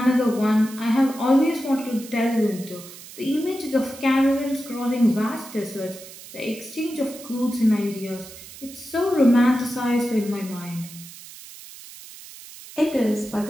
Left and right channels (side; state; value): right; noise; hiss, 16 dB below the sound